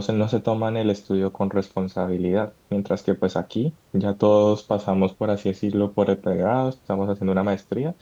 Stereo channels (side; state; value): both; identical; correlation 1.00